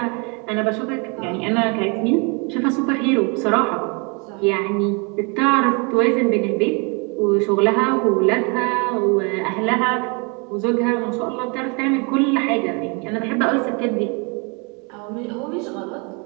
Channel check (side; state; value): left; quieter; 32.4 dB